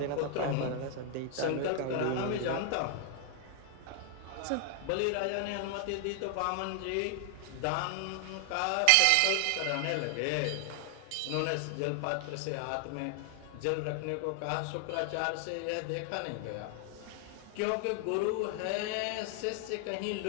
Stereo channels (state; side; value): different; both; correlation 0.00